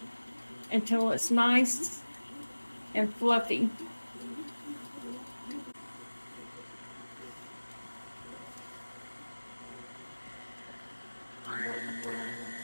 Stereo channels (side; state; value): both; inverted; correlation -1.00